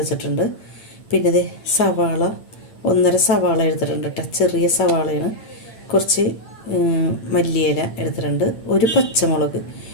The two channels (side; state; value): right; late; 8.9 ms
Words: പിന്നെ സവാള 1.5 സവാള എടുത്തിട്ടുണ്ട് കേട്ടോ, ചെറിയ സവാളയാണ്. കുറച്ച് മല്ലിയില എടുത്തിട്ടുണ്ട്. ഒരു പച്ചമുളക്.